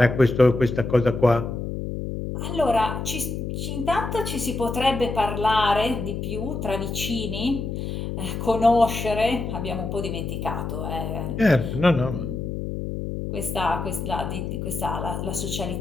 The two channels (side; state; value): left; noise; hum, 4 dB below the sound